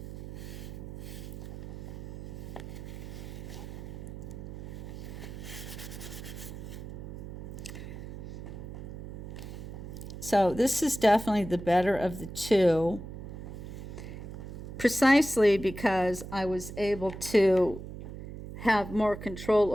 So this is definitely the better of the two, precisely because I was able to have more control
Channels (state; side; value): noise; right; hum, 10 dB below the sound